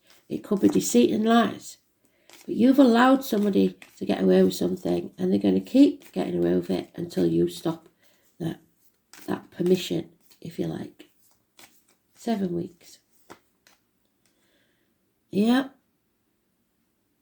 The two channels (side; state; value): both; identical; correlation 1.00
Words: It could be deceit and lies. But you've allowed somebody to get away with something, and they're going to keep getting away with it until you stop that permission, if you like. 7 weeks. Yeah.